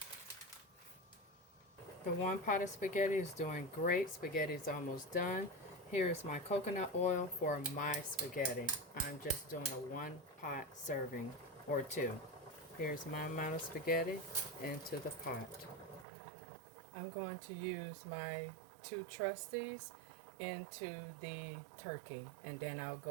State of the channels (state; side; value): drops out; left; at 16.1 s